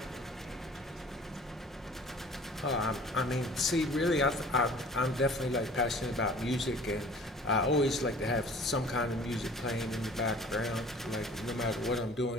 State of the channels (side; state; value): both; normal; correlation 0.48